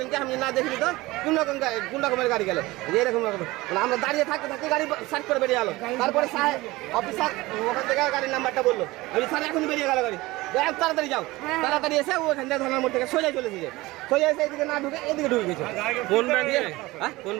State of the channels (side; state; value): left; quieter; 20.2 dB